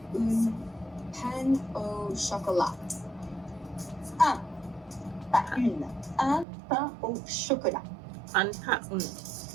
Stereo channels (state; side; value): drops out; left; at 6.5 s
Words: Pain au chocolat. Pas une. Un pain au chocolat.